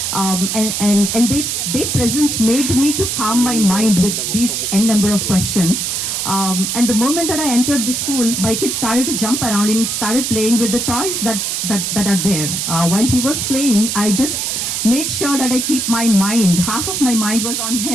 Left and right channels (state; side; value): noise; right; hiss, 1 dB below the sound